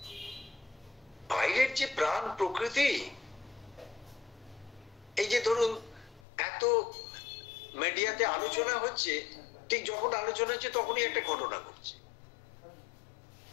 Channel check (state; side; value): drops out; right; at 6.2 s